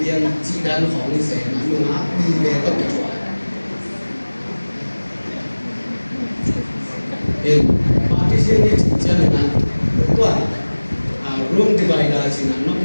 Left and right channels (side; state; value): both; inverted; correlation -1.00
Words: liên chỉ đang phòng sẽ người má đi về tất cả partition ni chana na tua room divider sina nok